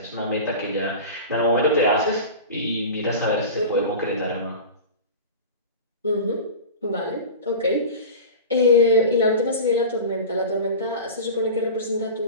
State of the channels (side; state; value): both; inverted; correlation -0.32